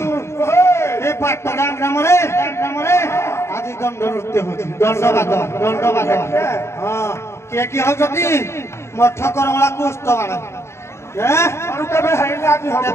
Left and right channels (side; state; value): right; late; 0.13 ms